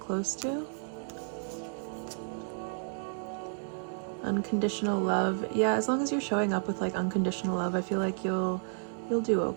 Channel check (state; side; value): silent; left; digital silence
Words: close to. Unconditional love, yeah, as long as you're showing up with like unconditional love, I feel like you'll do